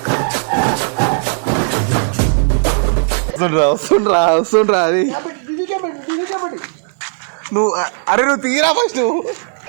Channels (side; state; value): left; silent; digital silence